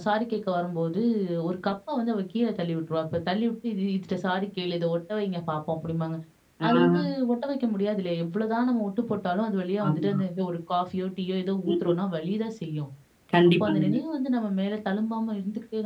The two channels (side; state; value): both; identical; correlation 1.00